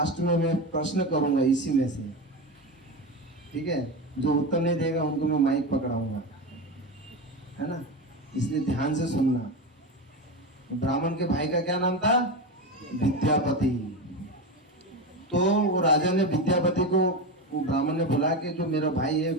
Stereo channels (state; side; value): normal; both; correlation 0.19